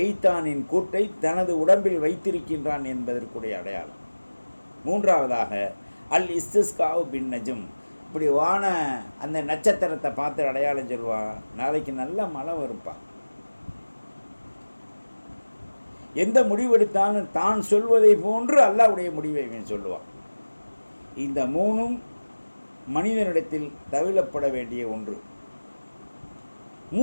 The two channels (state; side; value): inverted; both; correlation -1.00